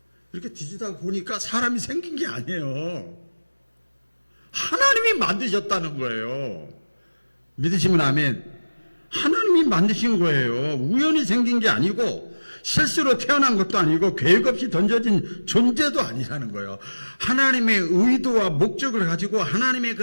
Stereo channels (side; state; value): both; inverted; correlation -1.00